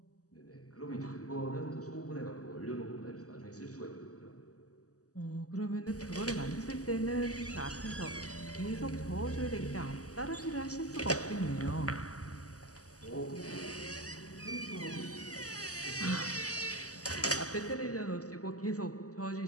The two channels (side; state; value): right; late; 0.66 ms